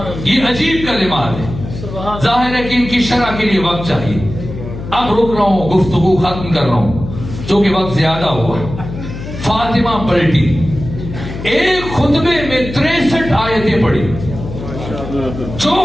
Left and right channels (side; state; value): left; noise; hum, 9 dB below the sound